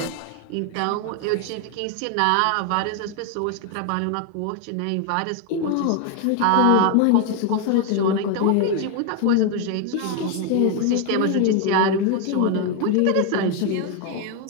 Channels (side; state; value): both; different; correlation 0.01